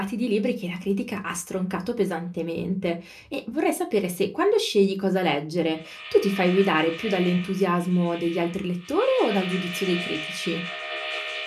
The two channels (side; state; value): both; identical; correlation 1.00